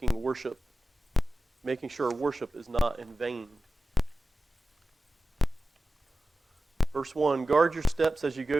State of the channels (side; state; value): both; normal; correlation 0.95